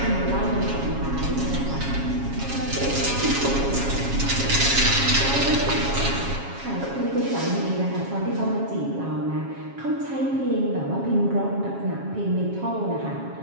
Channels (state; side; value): late; left; 7.3 ms